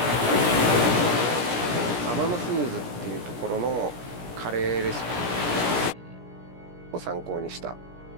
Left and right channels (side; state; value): left; late; 17 ms